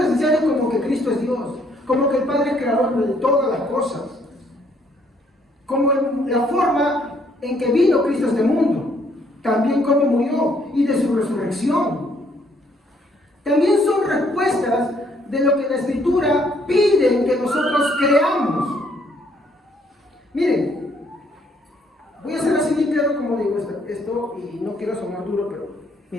como que Cristo es Dios, como que el Padre es creador de todas las cosas, como la forma en que vino Cristo a este mundo, también cómo murió y de su resurrección. También son respuestas de lo que la Escritura pide que nosotros creamos. Miren, voy a hacer así bien claro como digo esto y no quiero sonar duro, pero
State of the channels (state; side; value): normal; both; correlation 0.67